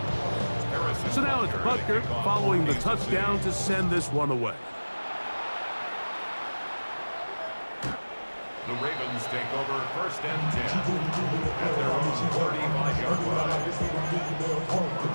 So now it's Butker following the touchdown to send this one away. The Ravens take over first and 10 at their own 35-yard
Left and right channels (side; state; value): both; inverted; correlation -1.00